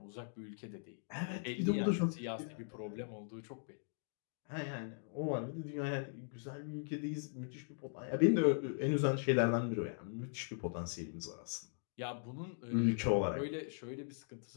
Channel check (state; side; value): silent; right; digital silence